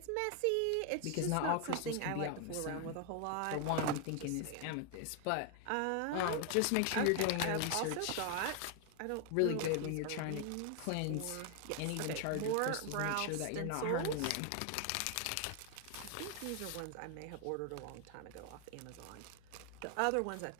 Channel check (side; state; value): both; different; correlation 0.00